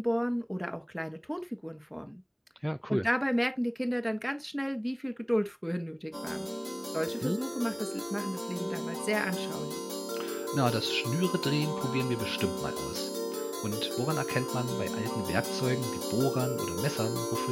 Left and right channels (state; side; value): identical; both; correlation 1.00